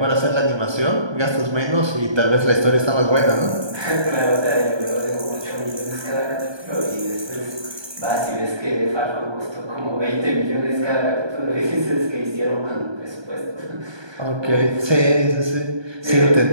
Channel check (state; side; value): late; left; 1.2 ms